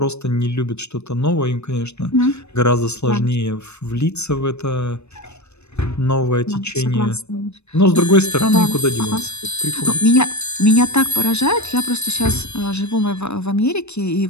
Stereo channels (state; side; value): late; right; 0.81 ms